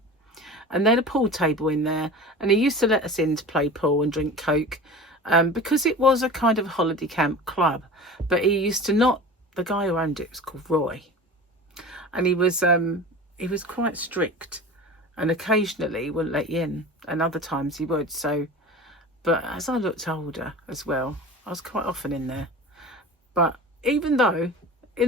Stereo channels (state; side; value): normal; both; correlation 0.35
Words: And they had a pool table in there, and he used to let us in to play pool and drink Coke, because it was a kind of holiday camp club. But he used to not, the guy who owned it was called Roy, and he was quite strict, and occasionally wouldn't let you in, and other times he would. So, but as I looked older as well, I was quite often in there. But even though